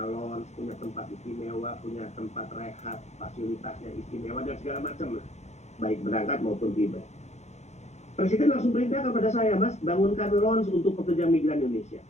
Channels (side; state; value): right; late; 0.33 ms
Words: lounge, punya tempat istimewa, punya tempat rehat, fasilitasnya istimewa dan segala macam lah, baik berangkat maupun tiba. Presiden langsung perintah kepada saya, Mas, bangunkan lounge untuk pekerja migran Indonesia.